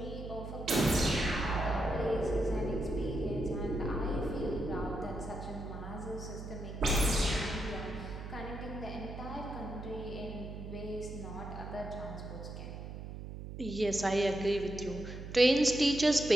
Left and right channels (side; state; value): right; noise; hum, 9 dB below the sound